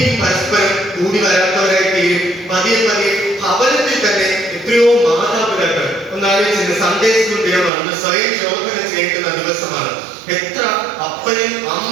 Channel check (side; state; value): left; drops out; at 7.7 s